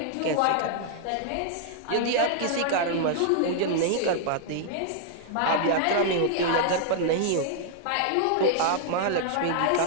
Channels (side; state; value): both; different; correlation -0.01